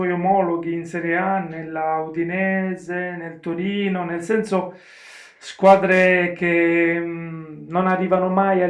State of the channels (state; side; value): identical; both; correlation 1.00